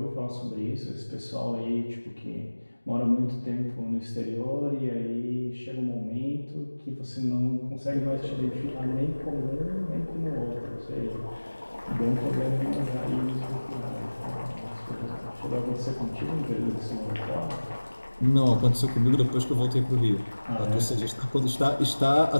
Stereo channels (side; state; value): both; inverted; correlation -1.00